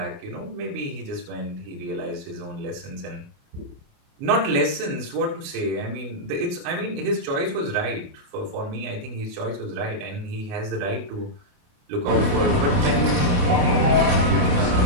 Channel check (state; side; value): late; left; 28 ms